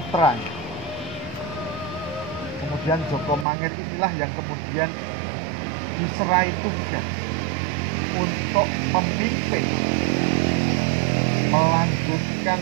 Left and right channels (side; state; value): left; drops out; at 3.5 s